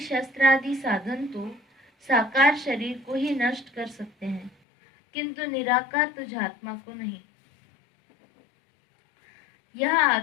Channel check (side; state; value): right; drops out; at 4.5 s